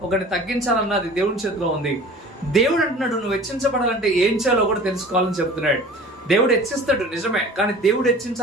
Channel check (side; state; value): both; normal; correlation 0.42